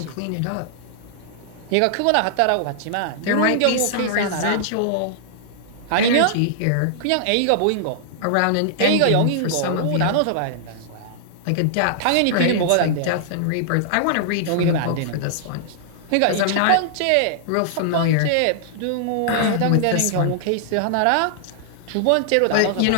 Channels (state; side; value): different; both; correlation -0.01